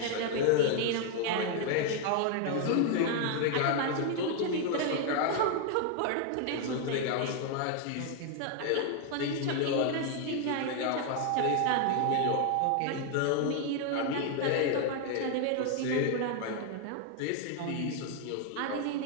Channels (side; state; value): both; different; correlation 0.00